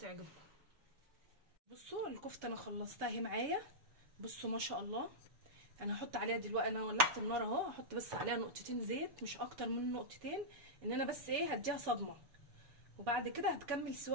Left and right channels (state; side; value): late; left; 7.0 ms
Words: بصوا الكفته انا خلصتها اهي معايا. بصوا ما شاء الله، انا هحط عليها دلوقتي، انا ولعت النار اهو، هحط بس عليها نقطتين زيت مش اكتر من نقطتين، ان انا بس ايه هديها صدمه، وبعد كده هتكمل